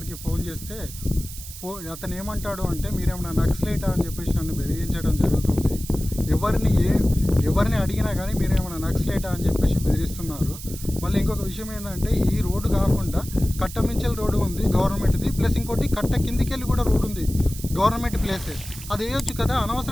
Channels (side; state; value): right; noise; hiss, 13 dB below the sound